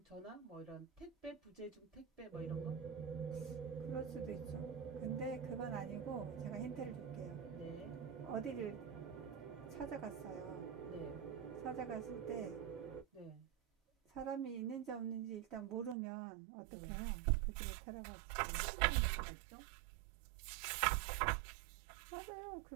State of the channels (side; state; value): left; drops out; at 16.0 s